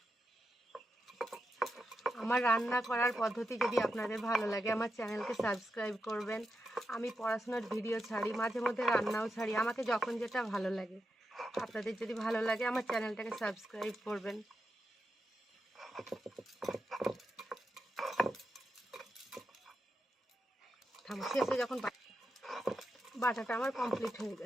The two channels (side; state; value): both; normal; correlation 0.87